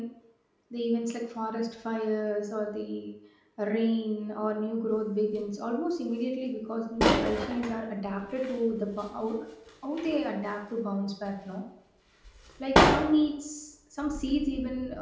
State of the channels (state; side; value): identical; both; correlation 1.00